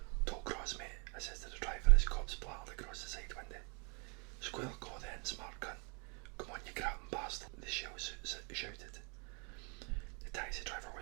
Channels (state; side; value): quieter; left; 33.9 dB